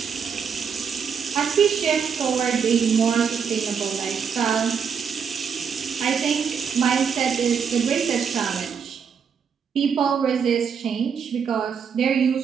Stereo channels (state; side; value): quieter; left; 6.7 dB